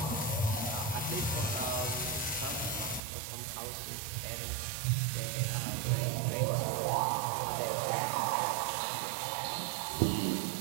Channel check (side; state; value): left; drops out; at 3.0 s